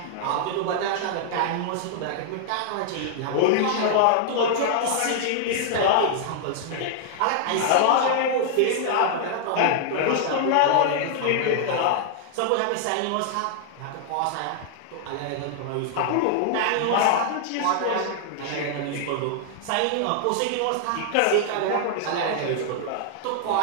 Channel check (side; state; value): both; different; correlation -0.01